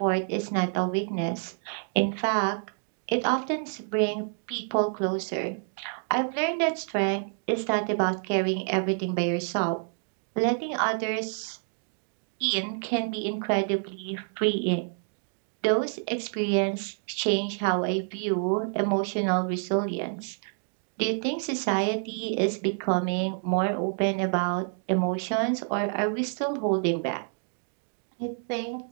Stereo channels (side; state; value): left; silent; 59 dB below the other